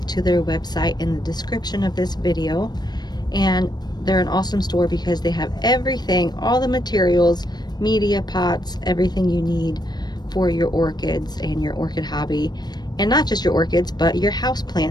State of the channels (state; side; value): late; right; 0.20 ms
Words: to their website in the description of this video, and they're an awesome store because they have everything, all the materials, media, pots, everything you need for your orchids and your orchid hobby, and not just your orchids but your house